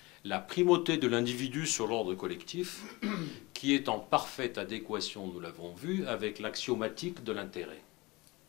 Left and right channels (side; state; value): right; quieter; 23.1 dB